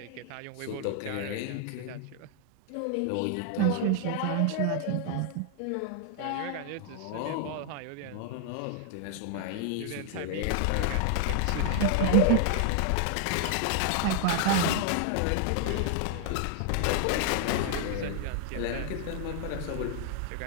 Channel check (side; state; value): both; different; correlation 0.00